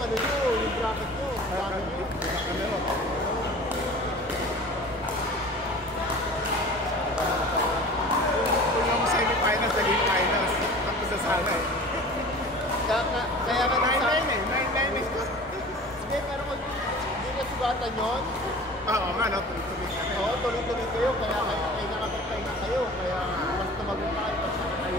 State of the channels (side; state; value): both; normal; correlation 0.41